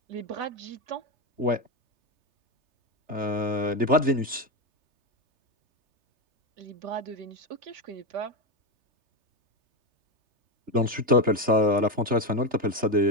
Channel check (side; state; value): left; late; 3.3 ms